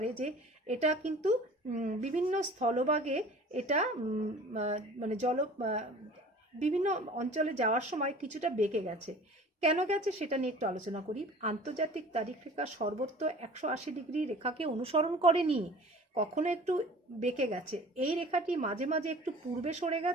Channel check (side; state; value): both; normal; correlation 0.45